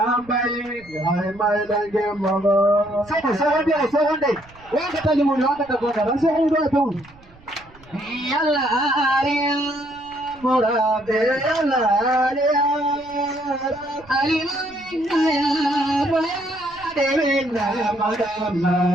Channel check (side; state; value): right; noise; rumble, 25 dB below the sound